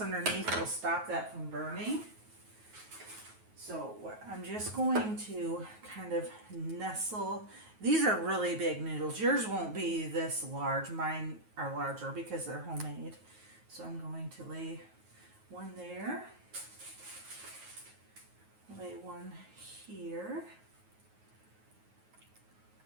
underneath will stop that from burning. So I'm just going to kind of nestle. These are really big noodles. Yours won't be this large. Mine are larger because they're homemade. So I'm going to lay one there. Lay one here.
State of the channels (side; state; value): left; late; 9.3 ms